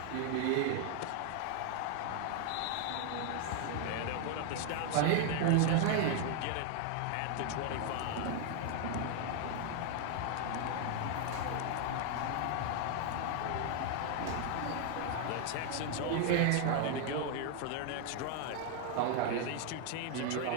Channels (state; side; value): different; both; correlation 0.00